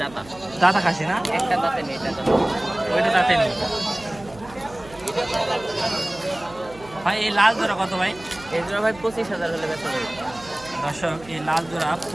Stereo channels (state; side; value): noise; right; hum, 21 dB below the sound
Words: দাঁতা খাসি না? ওইটা দাঁতে নেই ভাই। এই লাল জোড়া কত ভাই? এই জোড়া ভাই 25,000 হলে বেচা যাবে। দর্শক এই লাল জোড়া